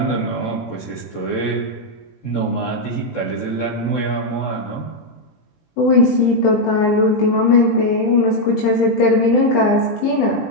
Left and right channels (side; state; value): right; late; 18 ms